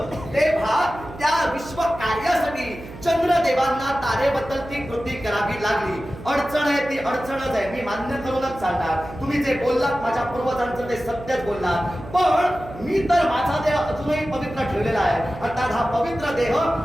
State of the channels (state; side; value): noise; right; hum, 15 dB below the sound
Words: तेव्हा त्या विश्व कार्यासाठी चंद्रदेवांना तारेबद्दल ती कृती करावी लागली. अडचण आहे ती अडचणच आहे, मी मान्य करूनच चालणार. तुम्ही जे बोललात माझ्या पूर्वजांचं ते सत्यच बोललात. पण मी तर माझा देह अजूनही पवित्र ठेवलेला आहे. अर्थात हा पवित्र देह